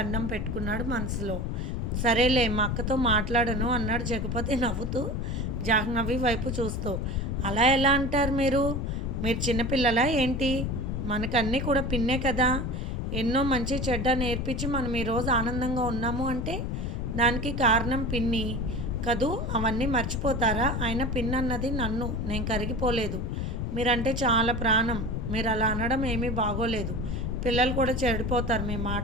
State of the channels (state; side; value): noise; left; rumble, 3 dB below the sound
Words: పెట్టుకున్నాడు మనసులో. సరేలే మా అక్కతో మాట్లాడను అన్నాడు జగపతి నవ్వుతూ జాహ్నవి వైపు చూస్తూ. అలా ఎలా అంటారు మీరు చిన్నపిల్లలా ఏంటి, మనకన్నీ కూడా పిన్నే కదా, ఎన్నో మంచి చెడ్డ నేర్పించి మనం ఈరోజు ఆనందంగా ఉన్నాము అంటే దానికి కారణం పిన్ని కదూ, అవన్నీ మర్చిపోతారా, ఆయన పిన్ అన్నది నన్ను, నేను కరిగిపోలేదు, మీరంటే చాలా ప్రాణం, మీరు అలా అనడం ఏమీ బాగోలేదు, పిల్లలు కూడా చెడిపోతారు మీ